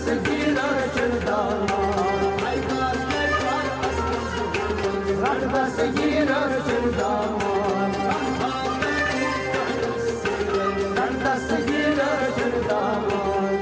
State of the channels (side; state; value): both; identical; correlation 1.00